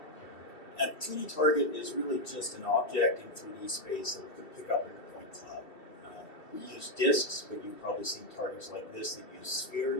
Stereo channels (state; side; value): late; right; 2.6 ms